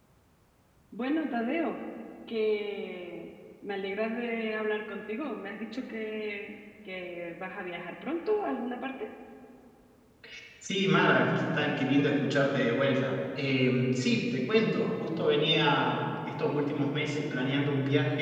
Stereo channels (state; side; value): identical; both; correlation 1.00